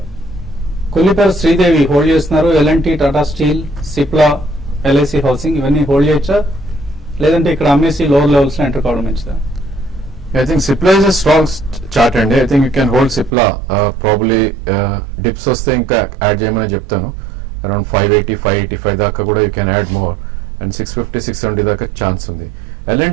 Kollipara Sridevi hold చేస్తున్నారు. LNT, Tata steel, Cipla, LIC housing ఇవన్నీ హోల్డ్ చేయొచ్చా, లేదంటే ఇక్కడ అమ్మేసి లోవర్ లెవెల్స్ లో ఎంటర్ కావడం మంచిదా? I think Cipla is a strong chart అండి. I think you can hold Cipla. Probably dips వస్తే ఇంకా యాడ్ చేయమని చెప్తాను. అరౌండ్ 580, 585 దాకా కూడా you can add more. And 650, 670 దాకా ఛాన్స్ ఉంది.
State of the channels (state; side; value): drops out; left; at 13.3 s